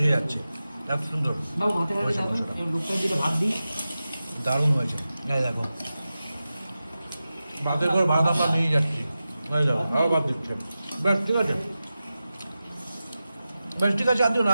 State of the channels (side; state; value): both; inverted; correlation -0.94